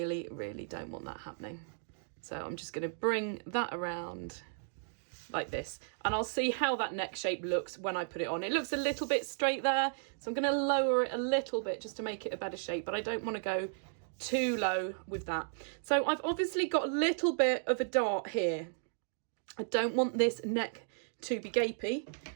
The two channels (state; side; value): silent; left; digital silence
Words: really don't want that happening. So I'm just going to bring that around like this, and I'll see how that neck shape looks when I put it on. It looks a little bit straight there, so I'm going to lower it a little bit just to make it a better shape, but I don't want to go too low with that. So I've obviously got a little bit of a dart here. I don't want this neck to be gapy,